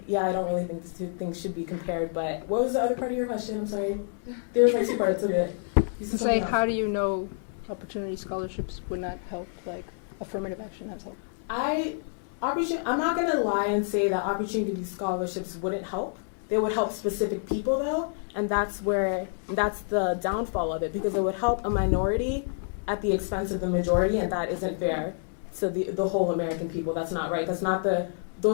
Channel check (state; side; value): silent; right; 59 dB below the other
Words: really think the two things should be compared, but what was the other part of your question? I'm sorry. There was like two parts of it. It's like, how do you know opportunity scholarships would not help, like affirmative action has helped? I'm not going to lie and say that opportunity scholarships wouldn't help. They would help specific people, though, and that's the downfall of it, because it would help a minority at the expense of the majority, and that isn't fair to the whole American people. That's not right.